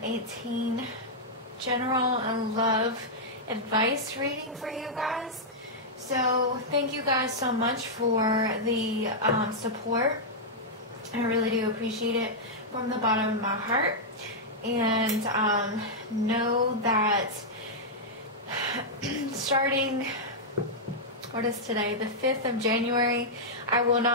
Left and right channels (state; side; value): normal; both; correlation -0.07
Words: general and love advice reading for you guys. So thank you guys so much for the support. I really do appreciate it from the bottom of my heart. And know that starting, what is today, the 5th of January, I will